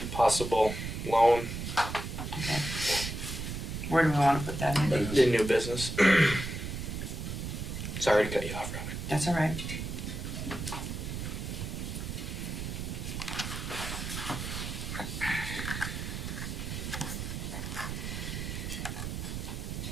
possible loan, Okay. Where do we want to put that in? the new business. Sorry to cut you off, Robert. That's all right.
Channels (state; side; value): noise; right; rumble, 5 dB below the sound